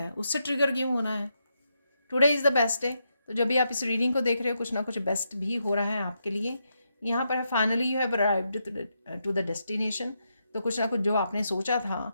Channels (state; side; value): inverted; both; correlation -0.82